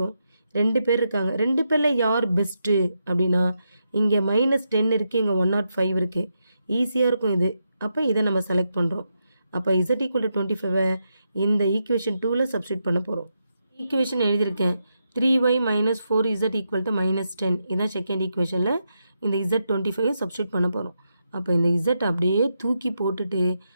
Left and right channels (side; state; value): both; inverted; correlation -0.84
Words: 2 பேர் இருக்காங்க. 2 பேரில் யார் பெஸ்ட்டு அப்படின்னா இங்கே -10 இருக்குது, இங்கே 105 இருக்குது. ஈஸியாக இருக்கும் இது. அப்போ இதை நம்ம செலக்ட் பண்ணுறோம். அப்போ இசட் ஈக்குவல் டு 25 இந்த ஈக்குவேஷன் 2ல் சப்ஸ்டியூட் பண்ண போகிறோம். ஈக்குவேஷன் எழுதியிருக்கேன் 3y - 4z ஈக்குவல் டு -10. இதான் செகண்ட் ஈக்குவேஷனில் இந்த இசட் 25 சப்ஸ்டியூட் பண்ண போகிறோம். அப்போ இந்த இசட் அப்படியே தூக்கி போட்டுட்டு